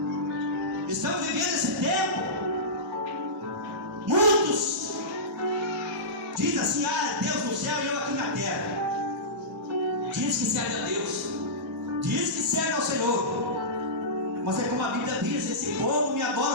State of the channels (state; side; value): normal; both; correlation -0.18